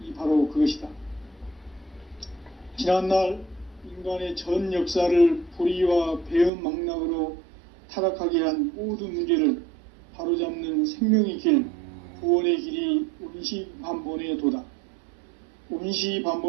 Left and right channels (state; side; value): drops out; left; at 6.5 s